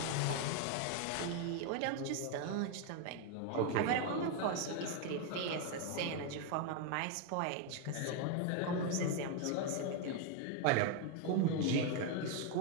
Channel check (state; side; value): different; both; correlation 0.01